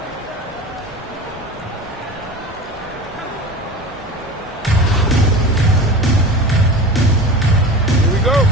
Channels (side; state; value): both; normal; correlation 0.33